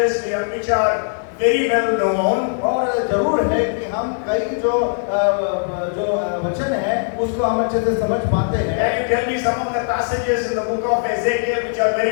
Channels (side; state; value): right; silent; digital silence